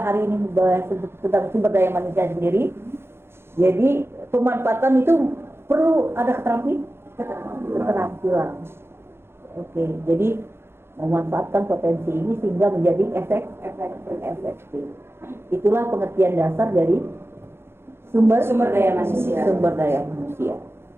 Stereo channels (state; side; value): late; left; 0.12 ms